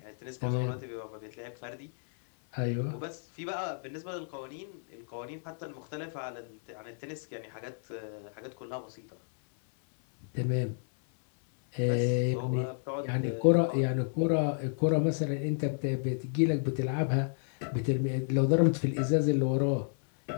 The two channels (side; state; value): right; silent; 57 dB below the other